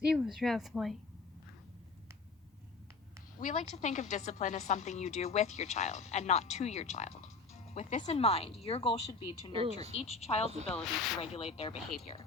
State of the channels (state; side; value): quieter; right; 4.1 dB